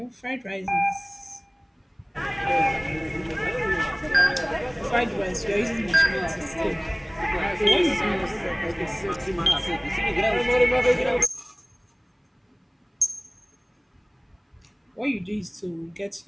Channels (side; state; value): both; identical; correlation 1.00